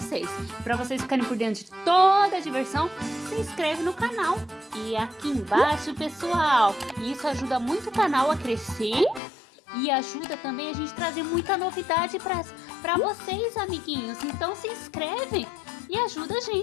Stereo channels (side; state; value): right; drops out; at 9.2 s